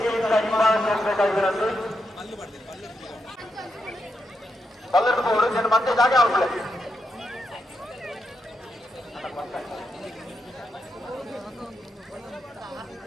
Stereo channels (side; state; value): both; normal; correlation 0.83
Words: ಹಿಂಭಾಗಬೇಕಾಗಿರಂತೆ ಪಲ್ಲಟ್ಟು ಹೋಗೋದು నేను ಮತ್ತೆ ಜಾಗ ಆಗುದಿಲ್ಲ